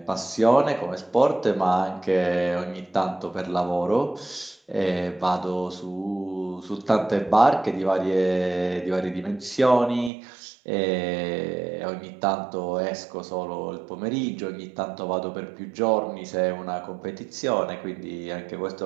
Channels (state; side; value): drops out; left; at 10.1 s